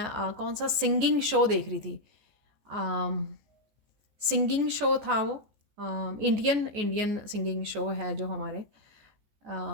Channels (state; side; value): late; left; 14 ms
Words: कौन सा सिंगिंग शो देख रही थी, सिंगिंग शो था वो, इंडियन इंडियन सिंगिंग शो है जो हमारे